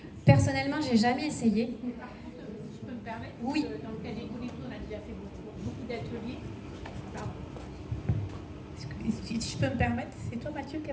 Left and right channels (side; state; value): both; identical; correlation 1.00